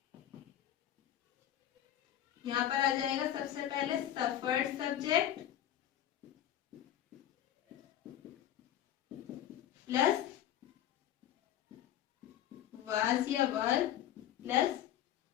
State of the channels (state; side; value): quieter; right; 11.4 dB